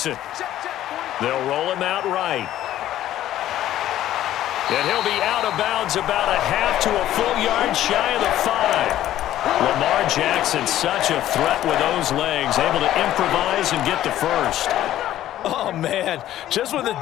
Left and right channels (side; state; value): right; quieter; 13.0 dB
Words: They'll roll him out right. And he'll be out of bounds about a half to a full yard shy of the 5. Lamar Jackson, such a threat with those legs, able to improvise and get the first. Oh, man. Just when the